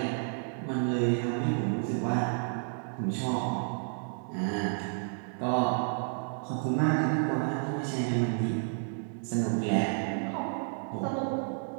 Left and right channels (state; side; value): silent; left; 57 dB below the other